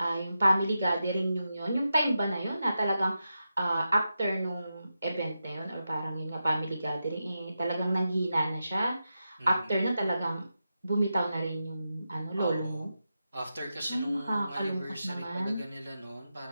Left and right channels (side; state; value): both; inverted; correlation -0.89